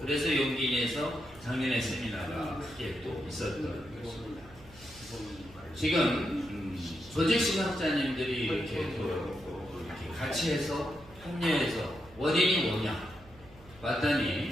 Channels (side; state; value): right; noise; hum, 22 dB below the sound